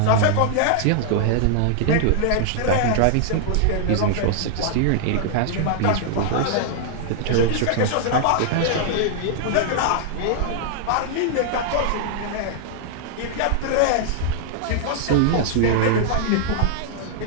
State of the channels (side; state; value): both; different; correlation -0.01